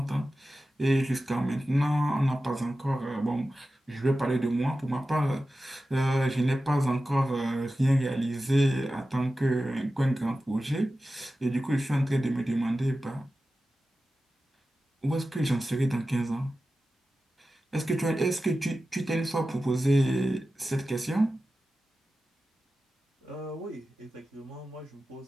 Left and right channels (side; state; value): both; normal; correlation 0.94